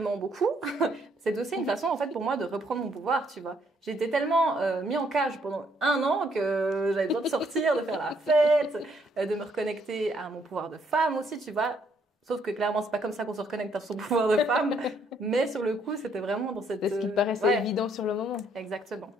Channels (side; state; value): both; normal; correlation 0.70